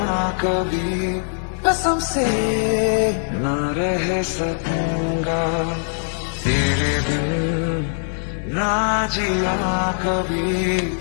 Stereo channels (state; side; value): silent; right; digital silence